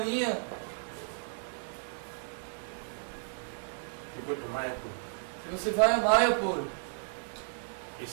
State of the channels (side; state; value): left; silent; digital silence